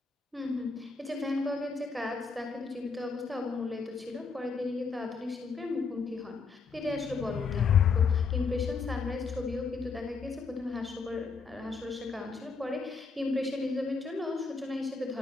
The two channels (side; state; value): right; quieter; 4.9 dB